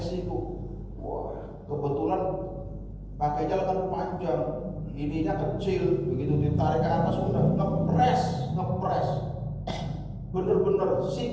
wah kebetulan pakainya lengan panjang, ininya kecil, begitu ditarik ke atas udah ngepres, bener-bener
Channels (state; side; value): identical; both; correlation 1.00